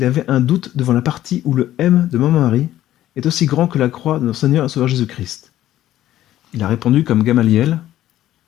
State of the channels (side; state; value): right; quieter; 13.4 dB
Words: avait un doute devant la partie où le M de Maman Marie est aussi grand que la croix de notre Seigneur et Sauveur Jésus-Christ. Il a répondu comme Gamaliel,